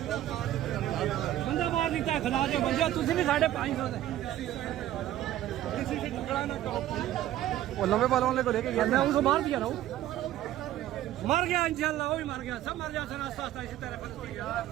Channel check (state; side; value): quieter; left; 13.3 dB